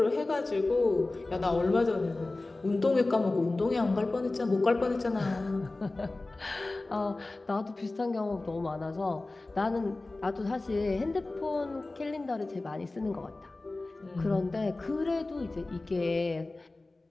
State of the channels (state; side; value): quieter; right; 3.1 dB